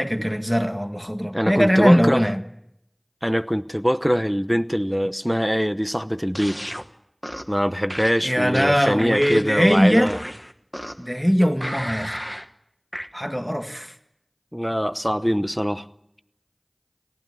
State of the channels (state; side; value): identical; both; correlation 1.00